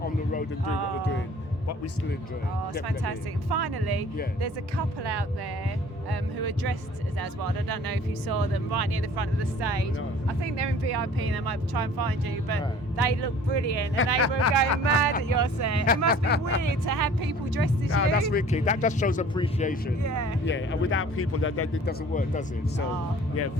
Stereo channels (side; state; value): both; normal; correlation 0.49